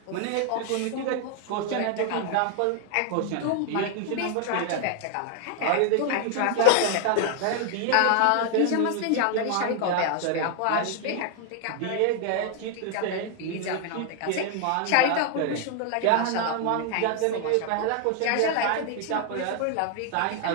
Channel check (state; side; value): different; both; correlation 0.00